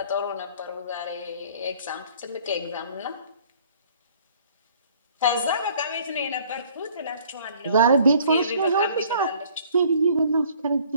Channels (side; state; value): both; inverted; correlation -0.56